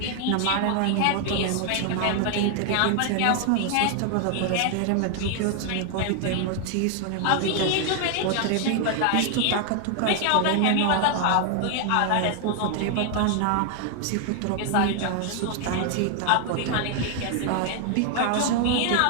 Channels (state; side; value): different; both; correlation 0.00